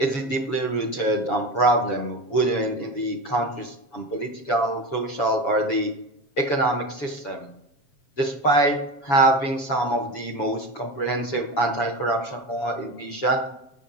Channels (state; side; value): late; right; 7.1 ms